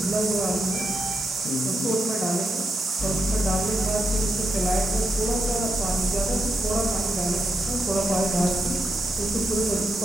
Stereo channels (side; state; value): both; normal; correlation 0.83